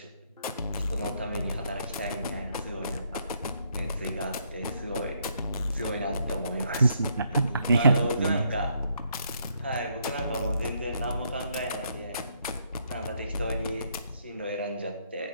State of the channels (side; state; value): both; inverted; correlation -0.72